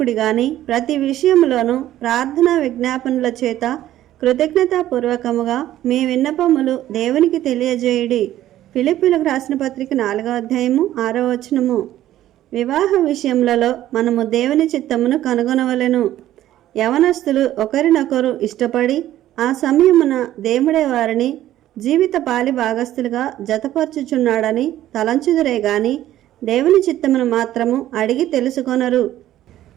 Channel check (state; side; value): quieter; left; 13.3 dB